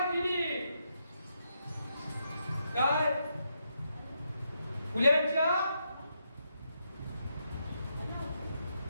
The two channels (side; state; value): both; inverted; correlation -0.81